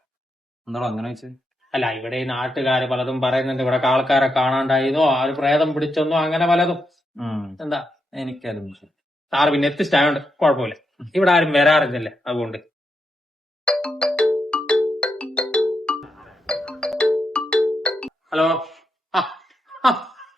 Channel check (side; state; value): both; normal; correlation 0.83